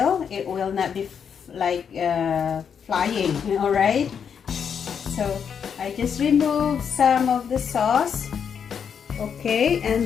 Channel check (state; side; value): quieter; right; 7.3 dB